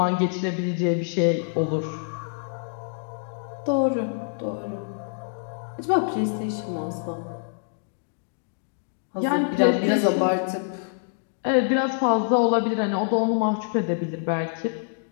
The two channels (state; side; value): silent; right; digital silence